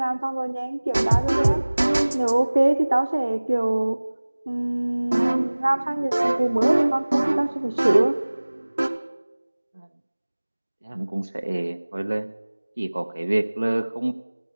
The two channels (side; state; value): both; inverted; correlation -1.00